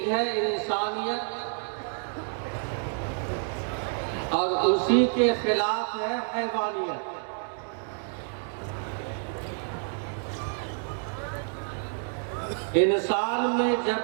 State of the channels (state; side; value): silent; left; 59 dB below the other